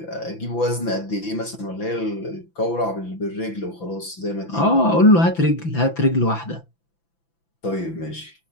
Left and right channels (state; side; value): late; right; 5.9 ms